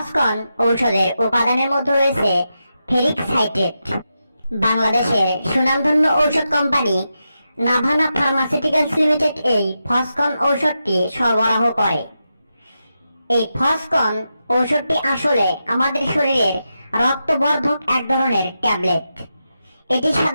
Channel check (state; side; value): inverted; both; correlation -0.88